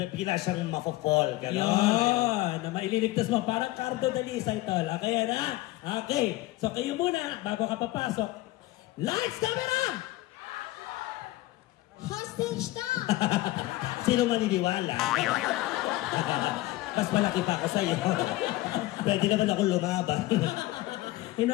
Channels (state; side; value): quieter; right; 18.0 dB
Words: siyang mafo-fall, gano'n. Yun, na maililigtas mo. Parang Cardo Dalisay, tol. Okay, yan, ha? Okay. So, kayo muna, bago ka papasok. Lights, camera! Hostage na! Sino maniniwala? Mas malaki pa ako sa'yo. Pwede naman ako lumaban.